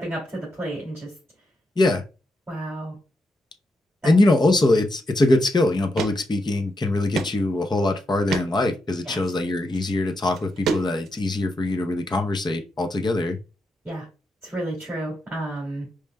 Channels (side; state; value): both; normal; correlation 0.84